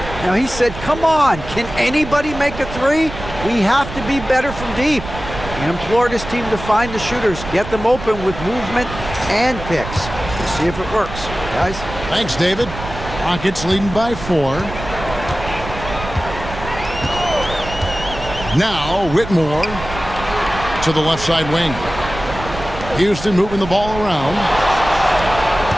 Now, he said, come on, can anybody make a three? We have to be better from deep. He implored his team to find the shooters, get them open with movement and picks. We'll see if it works, guys. Thanks, David. Rockets leading by 4. Now, Whitmore to the left side wing. Houston moving the ball around.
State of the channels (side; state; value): right; noise; rumble, 10 dB below the sound